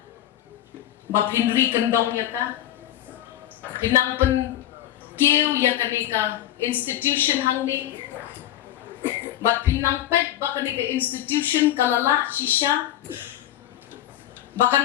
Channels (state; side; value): quieter; right; 12.7 dB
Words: ba pinri kandong ya ka pinang pen keu ya kani ka institution hangni ba pinang pet ba kani ka institution kalala shisha